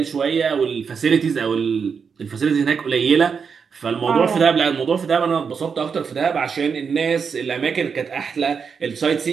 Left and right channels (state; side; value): quieter; left; 6.1 dB